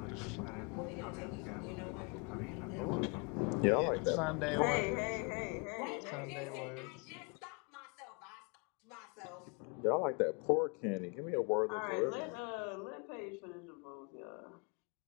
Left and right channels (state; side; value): quieter; right; 33.7 dB